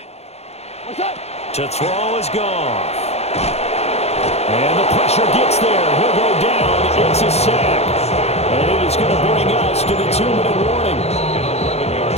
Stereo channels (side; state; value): right; late; 0.31 ms